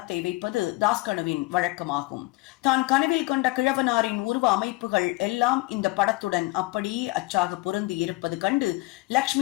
வைப்பது தாஸ்கனுவின் வழக்கமாகும். தான் கனவில் கண்ட கிழவனாரின் உருவ அமைப்புகள் எல்லாம் இந்த படத்துடன் அப்படியே அச்சாக பொருந்தி இருப்பது கண்டு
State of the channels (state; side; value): quieter; right; 21.7 dB